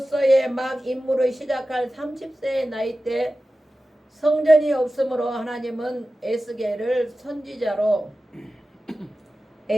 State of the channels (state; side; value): normal; both; correlation 0.94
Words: 막 임무를 시작할 30세의 나이 때 성전이 없으므로 하나님은 에스겔을 선지자로